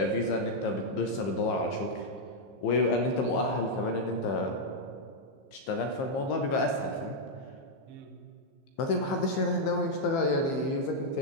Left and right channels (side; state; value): right; late; 15 ms